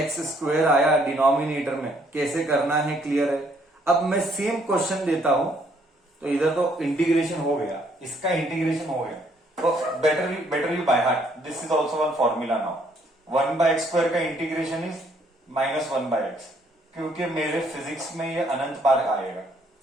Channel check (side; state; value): both; normal; correlation 0.67